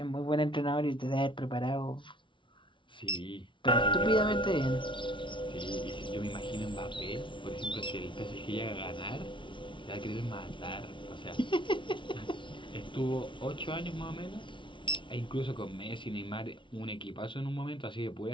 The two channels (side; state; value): right; late; 0.24 ms